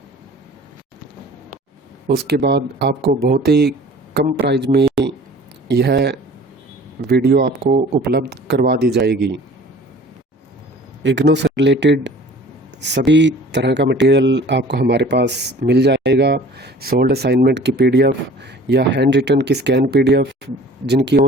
उसके बाद आपको बहुत ही कम प्राइस में यह वीडियो आपको उपलब्ध करवा दी जाएगी। इग्नू से रिलेटेड सभी तरह का मटेरियल आपको हमारे पास मिल जाएगा। सोल्ड असाइनमेंट की PDF या हैंड रिटन की स्कैन PDF, जिनकी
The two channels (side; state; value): both; normal; correlation 0.47